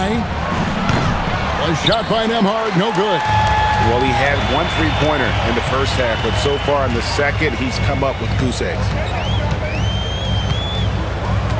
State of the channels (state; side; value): identical; both; correlation 1.00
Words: A shot by Nembhard, no good. Well, he had 1 3-pointer in the first half, but so far in the second, he's come up with goose eggs.